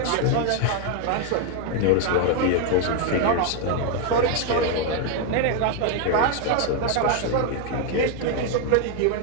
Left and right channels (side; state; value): both; different; correlation 0.01